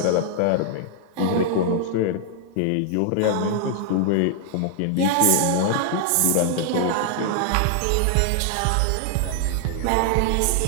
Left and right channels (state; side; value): different; both; correlation -0.01